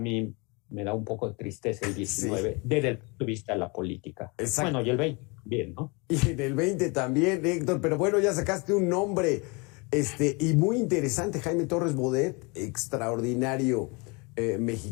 me da un poco de tristeza el 19 desde el punto de vista de la política. Exacto. Bueno, y el 20 también, ¿no? Y en el 20 también, Héctor, pero bueno, ya sacaste un nombre y muy interesante, Jaime Torres Bodet, extraordinario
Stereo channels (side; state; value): right; quieter; 29.4 dB